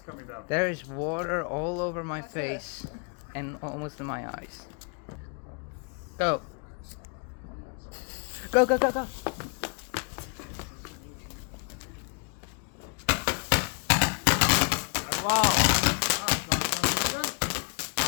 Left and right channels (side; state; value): right; quieter; 37.2 dB